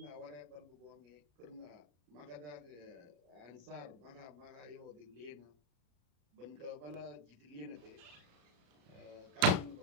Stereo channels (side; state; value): left; late; 34 ms